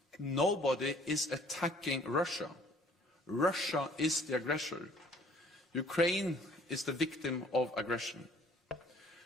Nobody is attacking Russia. Russia is the aggressor. Ukraine is the victim of aggression.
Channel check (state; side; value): normal; both; correlation 0.56